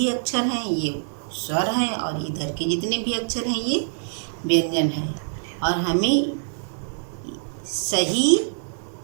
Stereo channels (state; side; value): silent; left; digital silence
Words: अक्षर हैं ये स्वर हैं और इधर के जितने भी अक्षर हैं ये व्यंजन हैं, और हमें सही